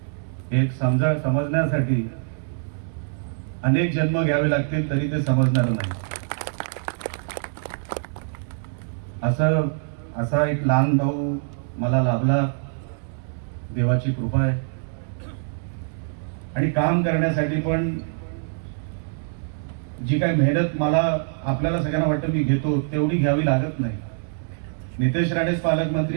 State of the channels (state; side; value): silent; left; digital silence